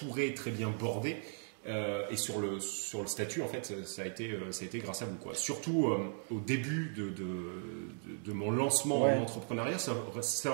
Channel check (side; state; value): left; silent; 53 dB below the other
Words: très bien bordé. Et sur le statut, en fait, ça a été grâce à vous, quoi. Surtout au début de mon lancement en entrepreneuriat, ça